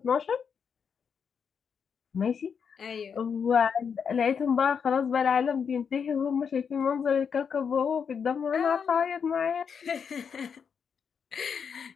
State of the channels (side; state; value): right; quieter; 6.7 dB